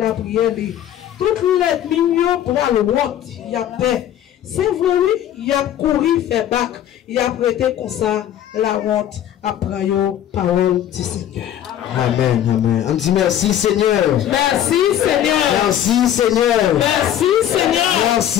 prière li. Toutes les millions pour la honte, il y a paix. C'est vrai, oui, il y a couru, fait bac, il y a prêté comme ça la honte après la parole du Seigneur. Amen, amen. On dit merci Seigneur. Merci Seigneur. Merci Seigneur. Merci Seigneur.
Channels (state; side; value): quieter; right; 11.1 dB